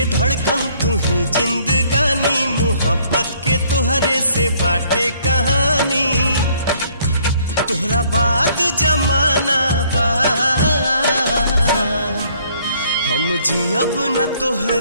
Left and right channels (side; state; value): both; inverted; correlation -0.63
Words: धड़कन, तू ही जिंदगानी। मोहब्बत के तोहरे से बाटे कहानी, तोहरा बाद जमाना बा। हम जियब न